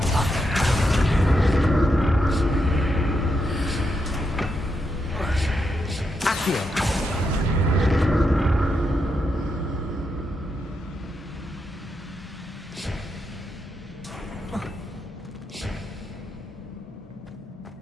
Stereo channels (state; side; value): normal; both; correlation 0.83